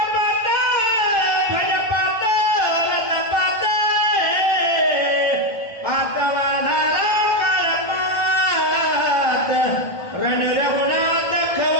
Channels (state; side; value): late; right; 1.4 ms